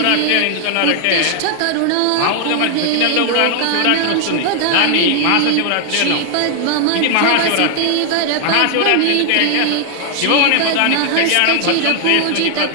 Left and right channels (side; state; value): both; different; correlation 0.00